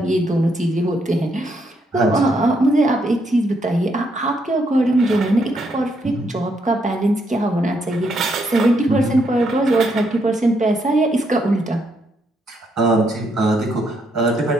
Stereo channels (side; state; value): both; normal; correlation 0.76